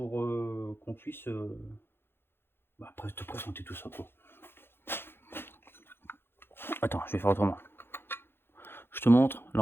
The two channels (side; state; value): right; late; 0.11 ms